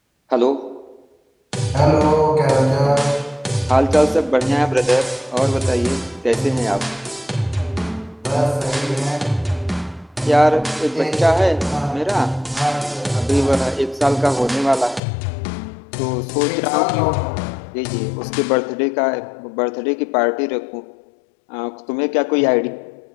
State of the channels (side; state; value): right; drops out; at 15.0 s